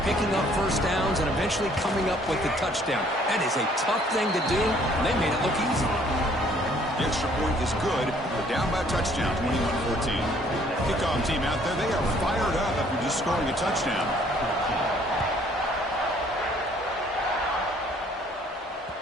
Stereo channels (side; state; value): both; normal; correlation 0.60